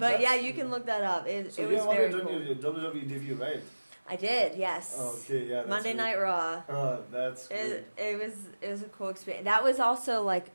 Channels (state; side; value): inverted; both; correlation -1.00